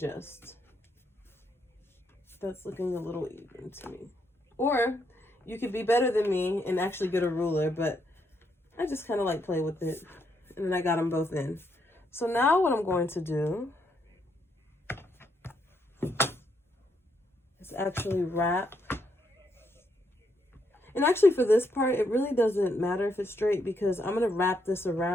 That's looking a little even to me. Or you could be better than me and actually get a ruler, but I just kind of like play with it. And then I got them both in. So now what I'm going to do is actually wrap. And actually for this part, it really doesn't matter if it's straight, because I'm going to wrap this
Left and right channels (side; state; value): both; normal; correlation 0.76